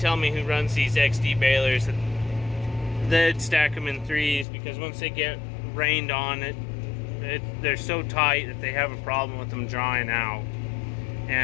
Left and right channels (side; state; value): right; drops out; at 4.5 s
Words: me who runs these XD balers that they'd stack them in threes, because once they get rained on, they're so tight that they have a problem with them drying out.